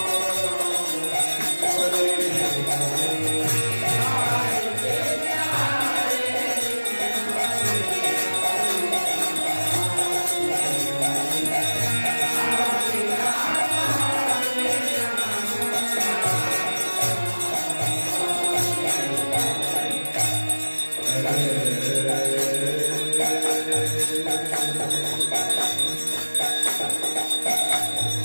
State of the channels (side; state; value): both; inverted; correlation -1.00